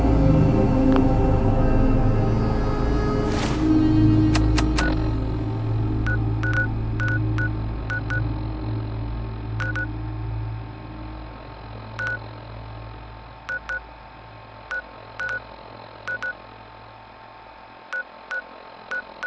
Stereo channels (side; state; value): both; identical; correlation 1.00